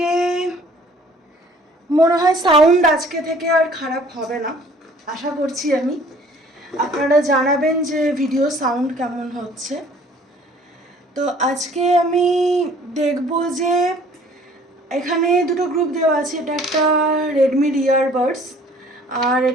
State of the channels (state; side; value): normal; both; correlation 0.54